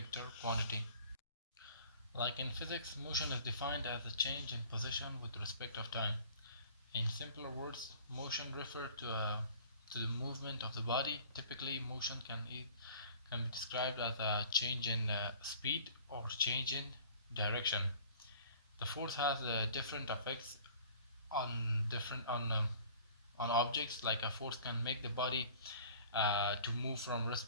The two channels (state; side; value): inverted; both; correlation -0.49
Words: quantity. Like in physics, motion is defined as a change in position with respect of time. In simpler words, motion refers to the movement of the body. Typically, motion can be described as a change in speed or change in direction. The force has different effects on objects. Like a force can make the body to move from